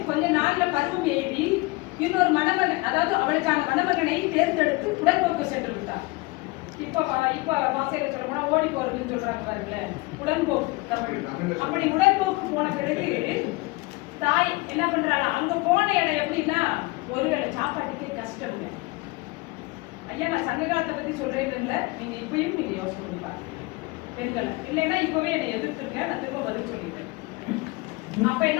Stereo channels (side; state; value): right; quieter; 23.7 dB